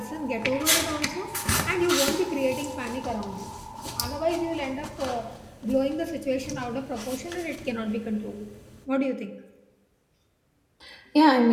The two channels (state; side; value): identical; both; correlation 1.00